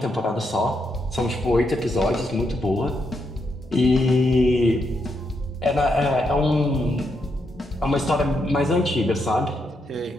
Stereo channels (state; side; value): normal; both; correlation 0.80